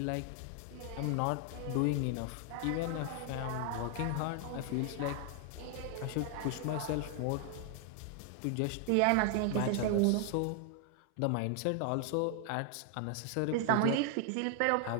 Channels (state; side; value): different; both; correlation 0.00